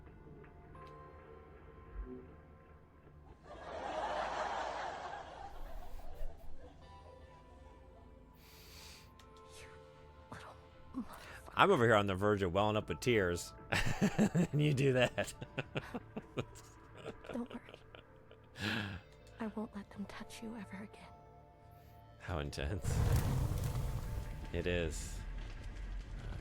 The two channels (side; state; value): both; identical; correlation 1.00